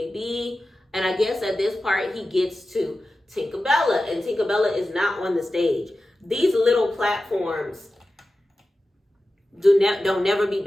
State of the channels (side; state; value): both; normal; correlation 0.94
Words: be. And I guess at this part he gets to Tinkerbella, and Tinkerbella is not on the stage. These little platforms don't never be